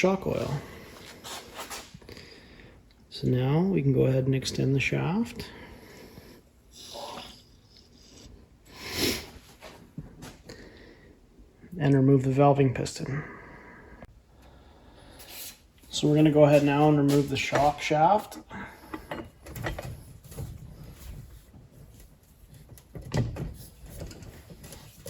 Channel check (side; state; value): both; identical; correlation 1.00